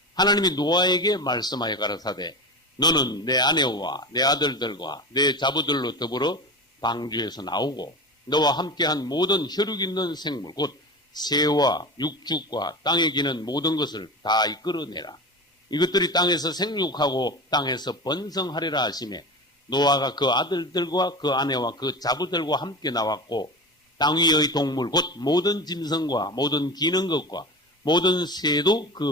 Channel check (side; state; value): both; normal; correlation 0.28